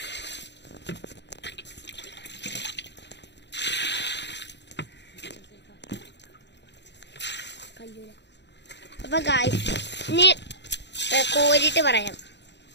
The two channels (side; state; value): right; late; 0.51 ms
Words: അപ്പൊ ഗായ്സ് ഇനി കോരിട്ട് പറയാം.